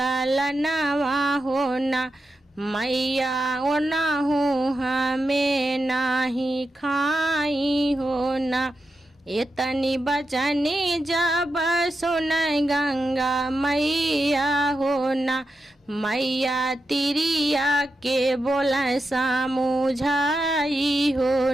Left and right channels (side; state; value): both; normal; correlation 0.88